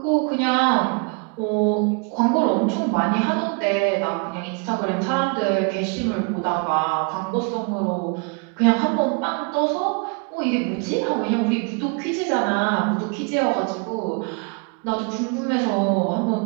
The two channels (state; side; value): quieter; left; 35.5 dB